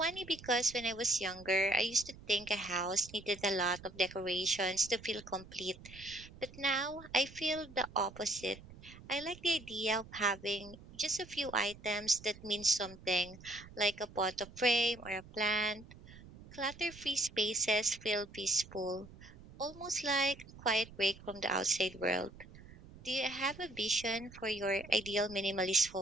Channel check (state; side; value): noise; right; rumble, 18 dB below the sound